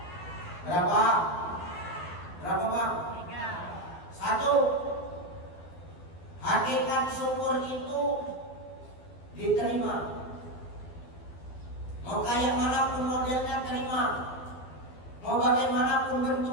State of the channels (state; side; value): late; right; 12 ms